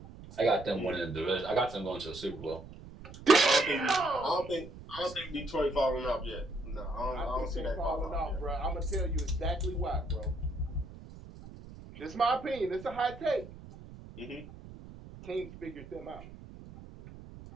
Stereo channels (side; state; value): right; noise; rumble, 16 dB below the sound